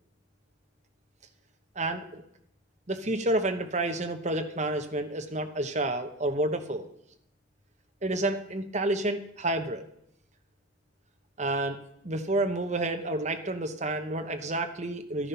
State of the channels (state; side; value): normal; both; correlation 0.24